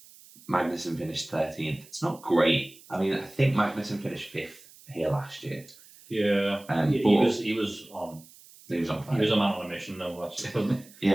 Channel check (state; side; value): noise; right; hiss, 23 dB below the sound